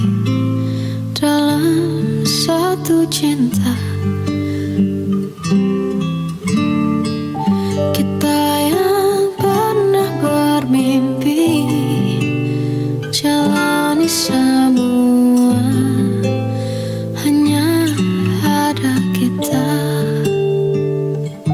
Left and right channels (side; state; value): both; identical; correlation 1.00